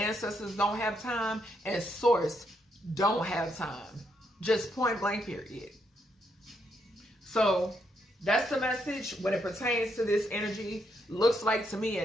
don't have time, and Source don't have time. Just point blank, period. So that's the message when it pertains to this energy. Looks like to me,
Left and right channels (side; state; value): both; normal; correlation 0.77